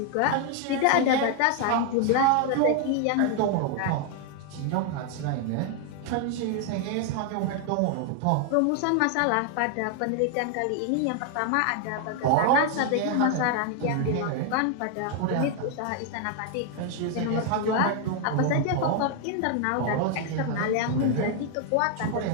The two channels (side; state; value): both; different; correlation 0.00